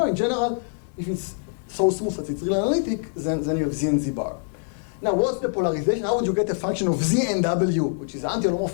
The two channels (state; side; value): silent; right; 62 dB below the other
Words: In general, if it's so smooth that it's real analytic, then you have z and z bar. Now, what's the polarization? How would you get a function of z and w, which is